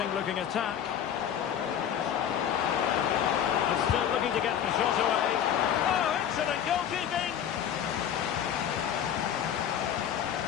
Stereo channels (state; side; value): quieter; right; 9.4 dB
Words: looking attack. And still looking to get the shot away. Oh, excellent goalkeeping.